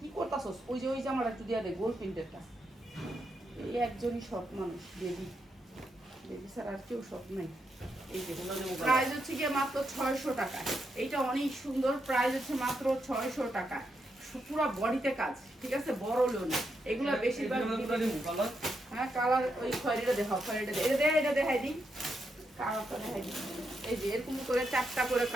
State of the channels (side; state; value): both; normal; correlation 0.82